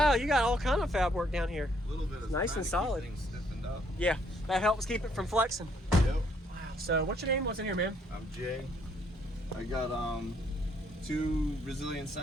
you got all kind of fab work down here. A little bit of nice and solid. Things stiffened up. Yeah, that helps keep it from flexing. Yep. Wow. So what's your name? What's in here, man? I'm Jay. I got 2 Resilient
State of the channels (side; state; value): both; normal; correlation 0.69